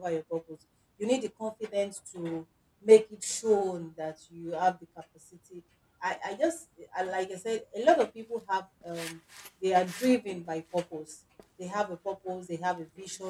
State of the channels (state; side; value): identical; both; correlation 1.00